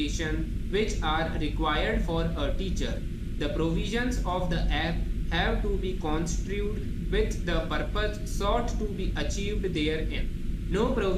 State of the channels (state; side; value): identical; both; correlation 1.00